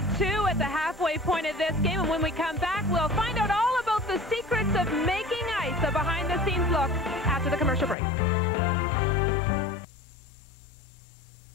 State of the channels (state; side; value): drops out; right; at 8.0 s